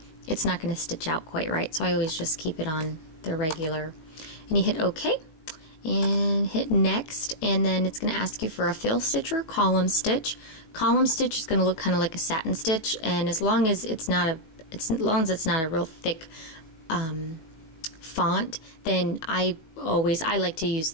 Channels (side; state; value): right; late; 18 ms